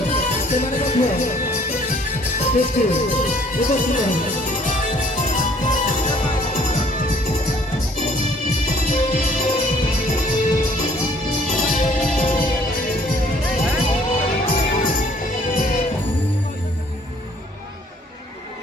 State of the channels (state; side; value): normal; both; correlation 0.59